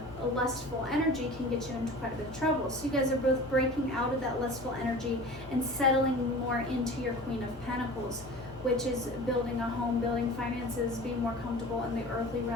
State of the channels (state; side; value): normal; both; correlation 0.39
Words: a lustful energy can get you into quite a bit of trouble. So you guys are both breaking out of that lustful energy and settling more into your Queen of Pentacles, which is building a home, building finances, being more comfortable in the earthly